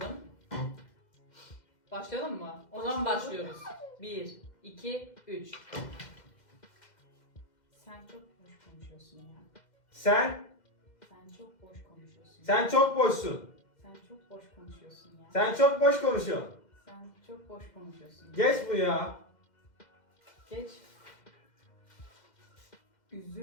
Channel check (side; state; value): right; late; 2.1 ms